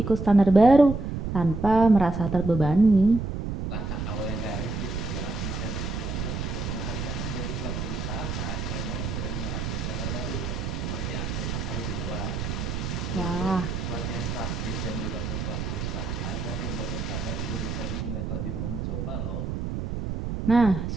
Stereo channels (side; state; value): right; noise; rumble, 3 dB below the sound